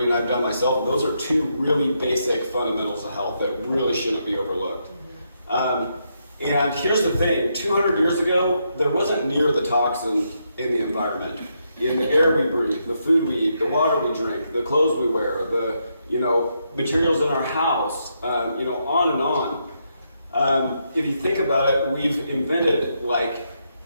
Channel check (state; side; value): inverted; both; correlation -0.79